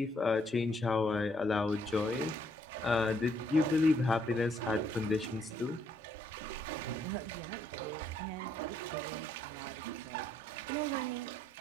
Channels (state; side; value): normal; both; correlation 0.71